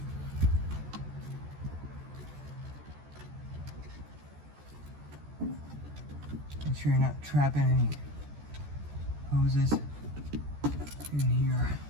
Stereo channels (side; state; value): left; late; 14 ms